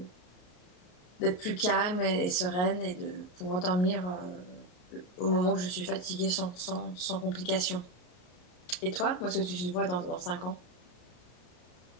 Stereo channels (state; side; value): late; right; 33 ms